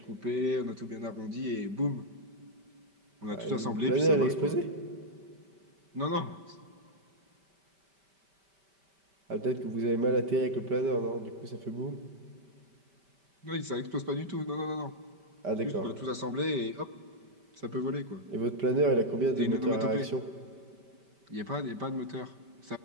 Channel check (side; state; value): left; late; 5.1 ms